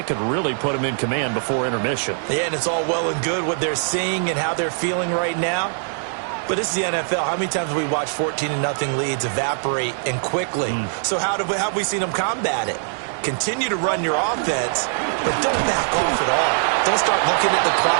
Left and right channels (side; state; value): left; silent; 64 dB below the other